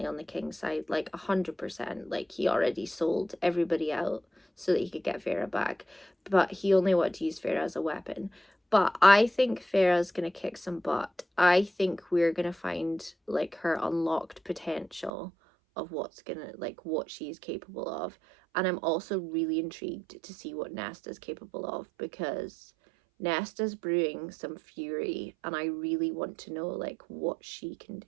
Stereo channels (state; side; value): drops out; left; at 15.1 s